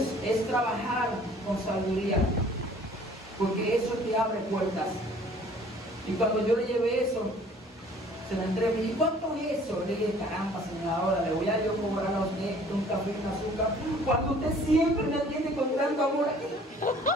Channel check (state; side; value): normal; both; correlation 0.53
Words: es trabajar con sabiduría, porque eso te abre puertas. Y cuando yo le llevé eso, se la entregué, me dije, ¿cuánto es eso? Le dije, caramba, señora, ahora le voy a yo cobrar a usted un café y un azúcar, cuando usted siempre me atiende con tanto amor aquí.